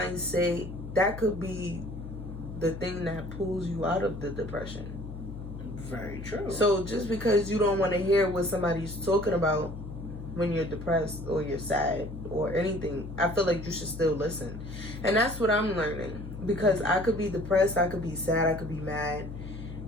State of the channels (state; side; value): noise; left; hum, 10 dB below the sound